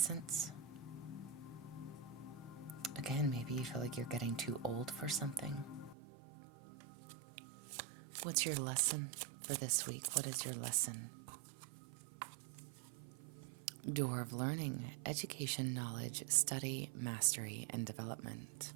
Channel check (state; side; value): drops out; left; at 6.0 s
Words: Again, maybe you feel like you're getting too old for something. What's your lesson for this week? What is your lesson? Door of learning, education, knowledge, study, mastery, and development.